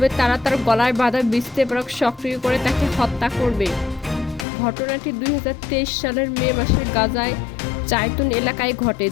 তারা তার গলায় বাঁধা বিস্ফোরক সক্রিয় করে তাকে হত্যা করবে। ঘটনাটি 2023 সালের মে মাসে গাজায় জাইতুন এলাকায় ঘটে,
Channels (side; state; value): right; drops out; at 4.5 s